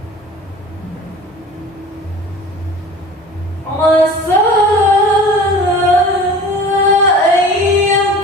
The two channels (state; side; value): normal; both; correlation 0.41